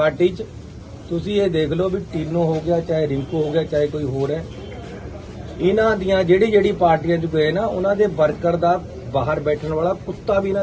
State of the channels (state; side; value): identical; both; correlation 1.00